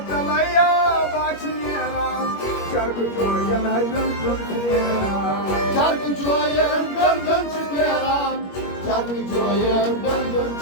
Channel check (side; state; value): right; late; 21 ms